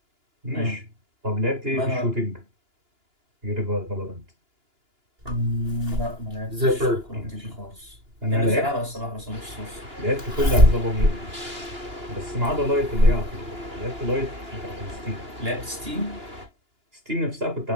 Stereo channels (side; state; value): left; late; 2.9 ms